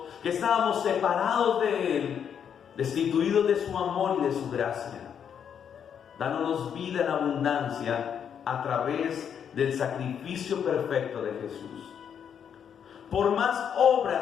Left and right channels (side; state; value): right; quieter; 8.1 dB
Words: que estábamos separados de Él, destituidos de su amor y de su gracia, dándonos vida en abundancia a través del sacrificio perfecto de Jesús. Por más